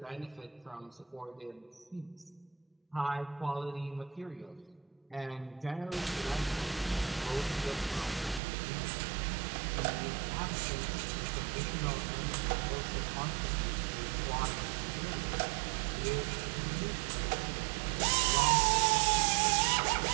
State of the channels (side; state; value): left; drops out; at 8.4 s